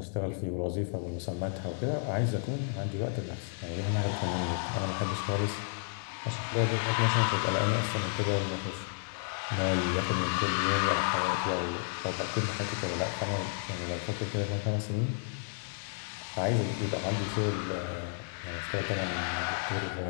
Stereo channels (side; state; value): right; silent; digital silence